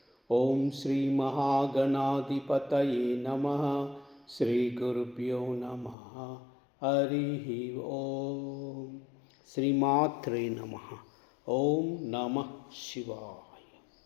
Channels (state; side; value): drops out; right; at 6.0 s